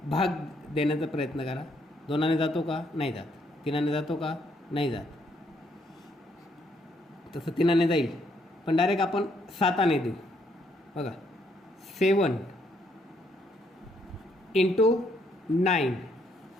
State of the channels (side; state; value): both; normal; correlation 0.72